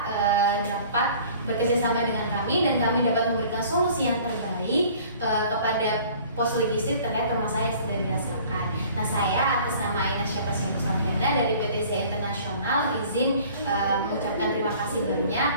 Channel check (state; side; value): inverted; both; correlation -0.50